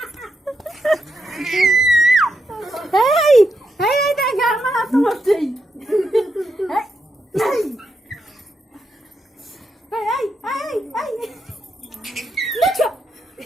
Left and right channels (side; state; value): both; normal; correlation 0.83